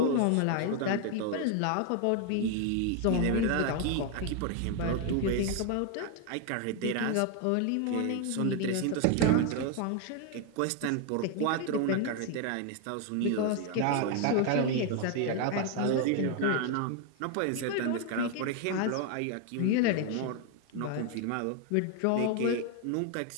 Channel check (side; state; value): both; different; correlation 0.01